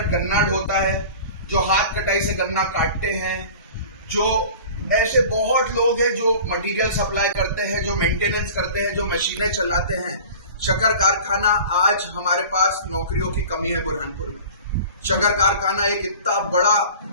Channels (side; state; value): both; inverted; correlation -0.41